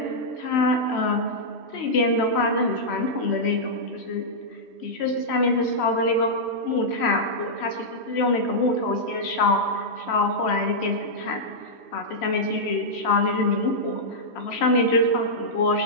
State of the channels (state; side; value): late; right; 3.1 ms